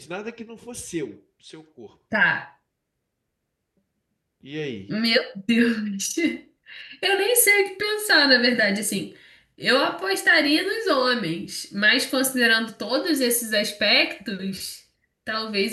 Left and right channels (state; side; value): identical; both; correlation 1.00